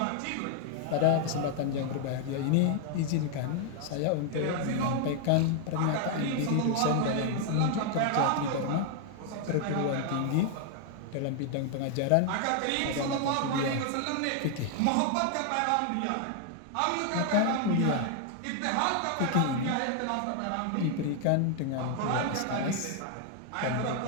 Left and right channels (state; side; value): different; both; correlation 0.00